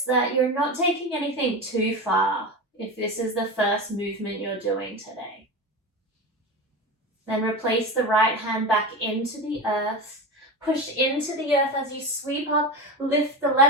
that you're not taking anything too far if this is the first movement you're doing today. Then replace the right hand back into the earth. Push into the earth as you sweep up. Lift the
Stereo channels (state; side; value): normal; both; correlation 0.23